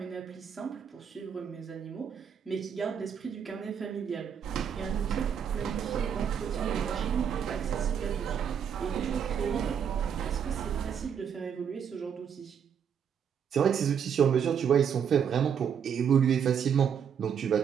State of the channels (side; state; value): left; quieter; 7.8 dB